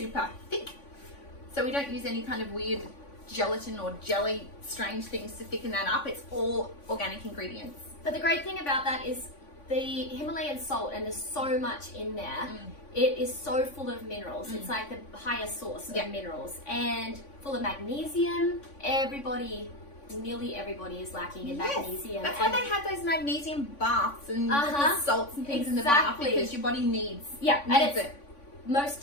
thick. So we don't use any kind of weird gelatin or jelly strange things to thicken that up. It's all organic ingredients. But the great thing about that is the Himalayan salt, and there's so much in there. It is so full of minerals. It's like the highest source of minerals, and full of magnesium. Nearly everybody is lacking in magnesium. That's why they have those magnesium baths and the salts and things in the bath, because your body needs it.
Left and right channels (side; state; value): right; late; 3.5 ms